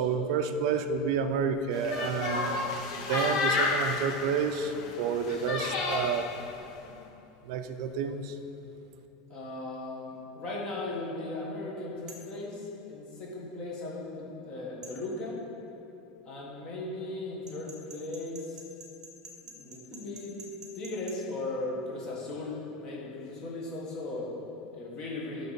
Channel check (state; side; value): normal; both; correlation 0.15